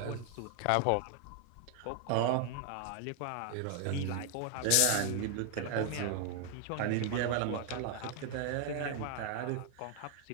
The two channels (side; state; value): both; different; correlation 0.00